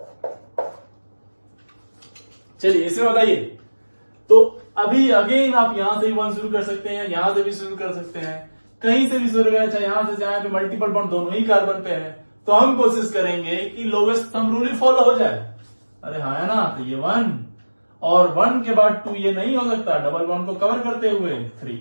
चलिए इसमें बताइए। तो अभी अगेन आप यहां से भी 1 शुरू कर सकते हैं, यहां से भी शुरू कर सकते हैं, कहीं से भी शुरू करें, चाहे यहां से चाहे पे मल्टीपल बॉन्ड दोनों ही कार्बन पे है। तो हम कोशिश करेंगे कि लोवेस्ट थंब रूल ही फॉलो हो जाए। अरे हाँ है ना? तो ये 1 और 1 के बाद 2 ये नहीं हो सकता, डबल बॉन्ड को कवर करते हुए 3,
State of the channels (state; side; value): inverted; both; correlation -1.00